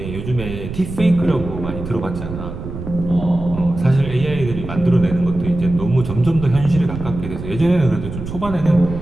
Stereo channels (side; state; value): right; noise; rumble, 9 dB below the sound